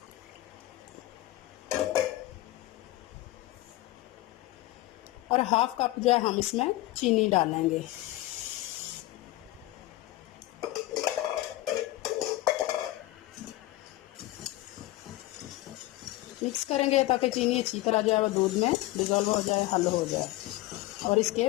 और हाफ कप जो है हम इसमें चीनी डालेंगे। मिक्स करेंगे ताकि चीनी अच्छी तरह जो है वो दूध में डिज़ोल्व हो जाए, हल हो जाए। और इसके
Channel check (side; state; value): right; quieter; 17.3 dB